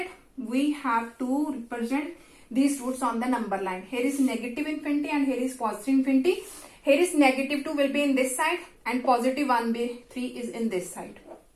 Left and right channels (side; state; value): both; identical; correlation 1.00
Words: we have to represent these roots on the number line. Here is negative infinity and here is positive infinity. Here is negative 2 will be in this side and positive 1 by 3 is in this side.